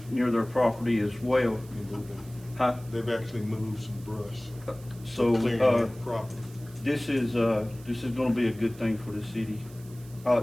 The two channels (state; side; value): noise; right; hiss, 23 dB below the sound